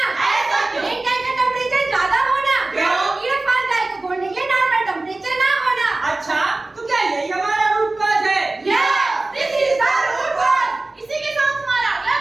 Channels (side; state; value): left; quieter; 3.0 dB